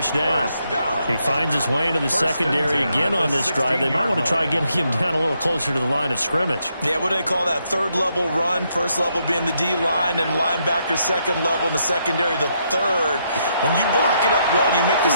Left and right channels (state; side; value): inverted; both; correlation -0.77